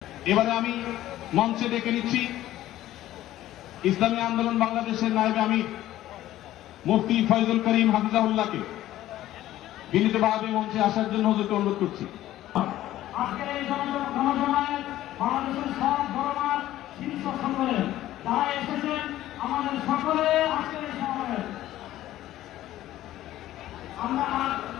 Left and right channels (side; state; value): right; quieter; 14.1 dB